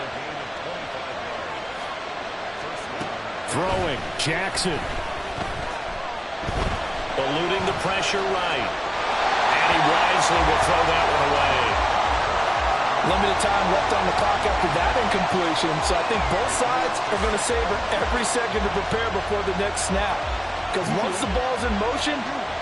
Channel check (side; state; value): both; identical; correlation 1.00